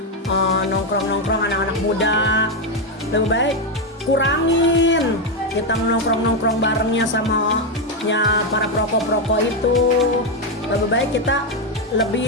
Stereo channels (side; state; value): both; normal; correlation 0.06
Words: nongkrong-nongkrong anak-anak muda. Lebih baik kurangin kita nongkrong barengnya sama para perokok itu. Lebih baik kita